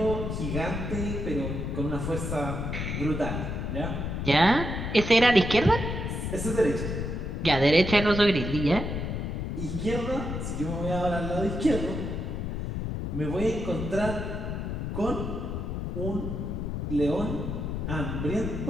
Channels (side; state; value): left; noise; rumble, 3 dB below the sound